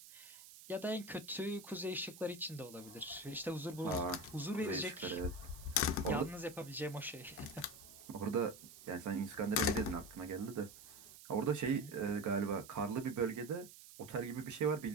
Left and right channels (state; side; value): noise; right; hiss, 17 dB below the sound